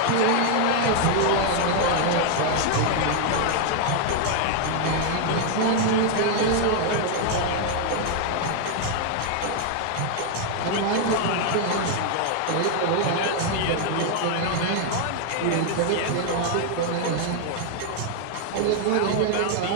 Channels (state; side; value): different; both; correlation 0.00